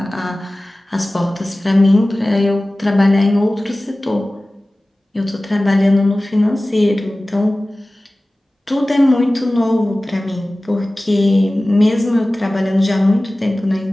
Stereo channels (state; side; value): normal; both; correlation 0.97